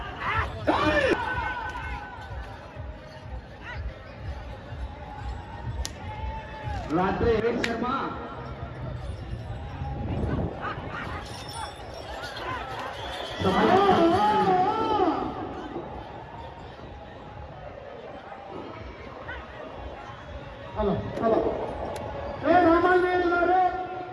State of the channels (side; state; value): both; identical; correlation 1.00